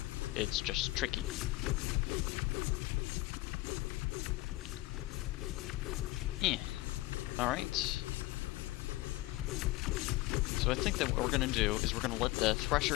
It's just tricky. Alright. So I think that what we're gonna do is we're gonna let the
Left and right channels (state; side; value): quieter; right; 19.5 dB